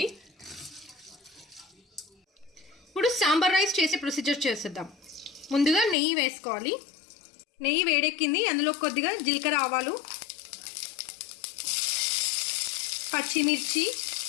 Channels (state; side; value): drops out; right; at 6.0 s